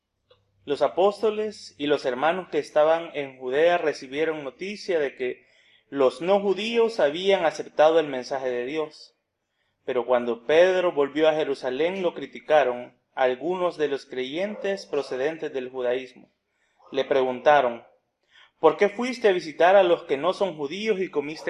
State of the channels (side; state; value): both; identical; correlation 1.00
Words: Los apóstoles y los hermanos que estaban en Judea recibieron noticia de que los no judíos habían aceptado el mensaje de Dios. Pero cuando Pedro volvió a Jerusalén lo criticaron algunos de los creyentes procedentes del judaísmo. Le preguntaron: ¿por qué fuiste a visitar a los que no son judíos y